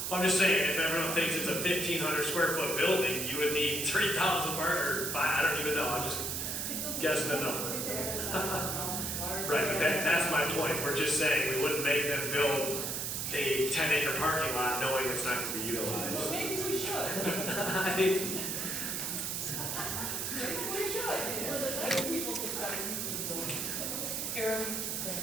I'm just saying, if everyone thinks it's a 1,500 square foot building, you would need 3,000 or I don't even know, I'm just guessing the number. Right, but that's my point, we're just saying we wouldn't make them build a 10-acre parking lot knowing it's not gonna be utilized. Maybe we should.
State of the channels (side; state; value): right; noise; hiss, 2 dB below the sound